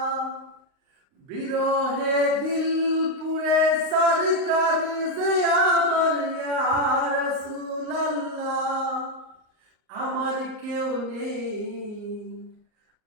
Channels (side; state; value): left; late; 38 ms